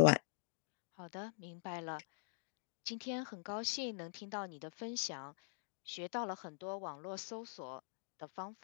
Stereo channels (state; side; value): silent; right; digital silence